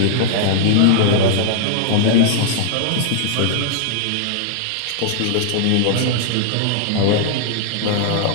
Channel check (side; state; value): both; different; correlation -0.01